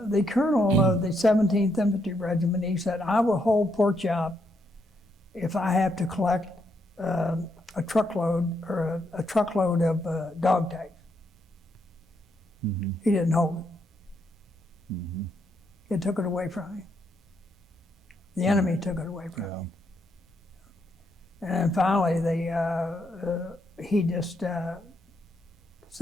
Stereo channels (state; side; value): normal; both; correlation 0.77